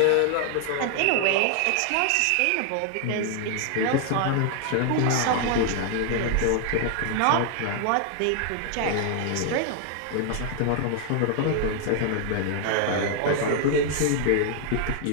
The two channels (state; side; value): different; both; correlation 0.00